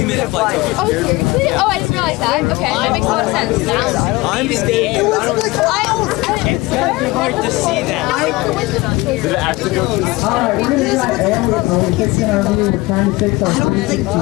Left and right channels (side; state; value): right; quieter; 21.6 dB